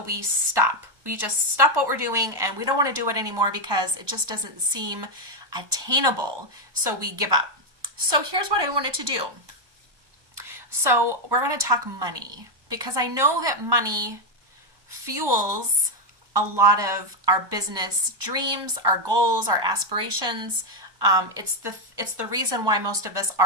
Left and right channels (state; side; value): late; left; 1.1 ms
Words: we stop. We just stop what we're doing, and we don't want to do it anymore because it just doesn't seem attainable. So we give up. So here's what I wanted to do. So we're going to talk money, because I know that money fuels a lot of our business dreams, our goals, our aspirations. It's the reason why most of us